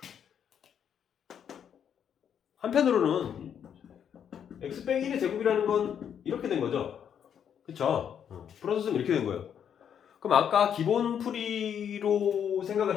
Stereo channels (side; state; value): right; quieter; 8.5 dB